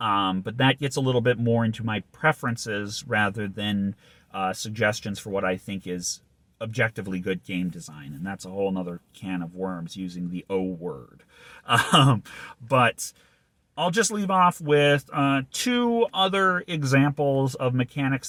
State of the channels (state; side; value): identical; both; correlation 1.00